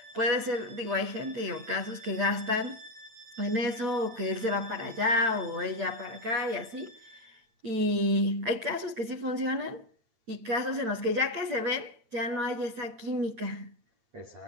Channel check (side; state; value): left; late; 8.9 ms